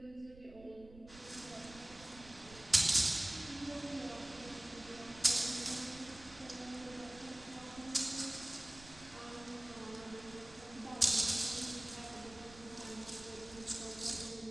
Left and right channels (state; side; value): noise; right; rumble, 19 dB below the sound